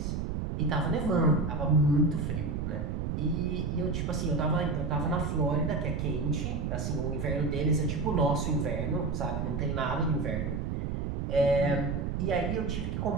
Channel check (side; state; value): right; noise; rumble, 2 dB below the sound